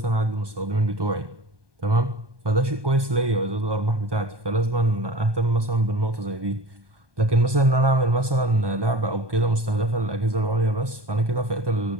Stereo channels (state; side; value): late; left; 1.2 ms